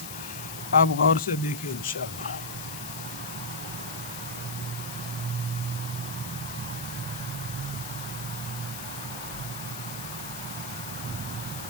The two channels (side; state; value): left; noise; hiss, 8 dB below the sound